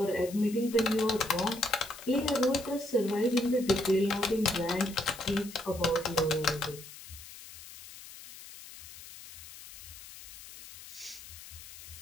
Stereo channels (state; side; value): noise; left; hiss, 16 dB below the sound